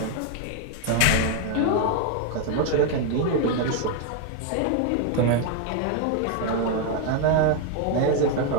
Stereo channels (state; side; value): different; both; correlation 0.00